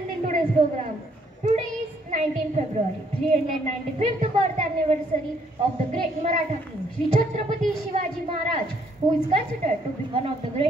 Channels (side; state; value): both; normal; correlation 0.68